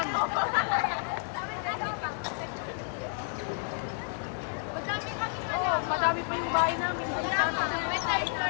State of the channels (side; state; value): right; silent; 57 dB below the other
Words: Madami kami Oo, madami pa yung bahay namin. Hindi sana. May